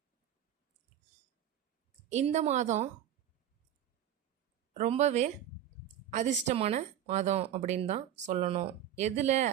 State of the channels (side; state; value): left; quieter; 10.6 dB